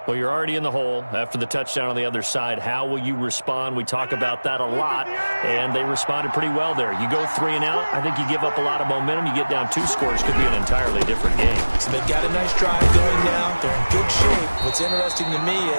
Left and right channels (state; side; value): inverted; both; correlation -1.00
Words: Well, you're already in the hole after the touchdown on the other side. How will you respond? We talk about that a lot, and they responded pretty well there. You go 3 and out, I think you give up a lot of momentum. You get down 2 scores, could be an entirely different game. So they've got a nice drive going now. They're in good shape. What's interesting to me